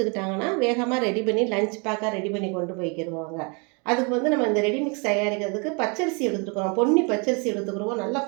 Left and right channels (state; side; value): quieter; left; 33.4 dB